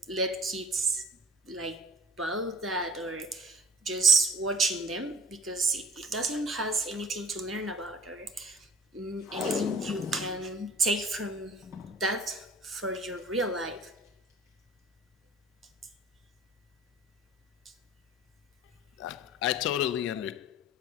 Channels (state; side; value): normal; both; correlation 0.44